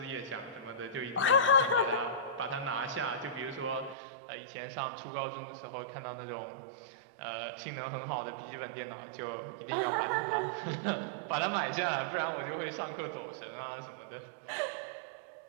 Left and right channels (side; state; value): left; drops out; at 4.0 s